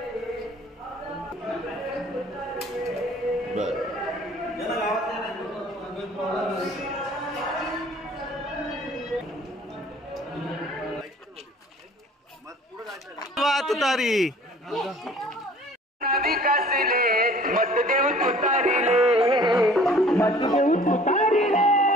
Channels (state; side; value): normal; both; correlation 0.51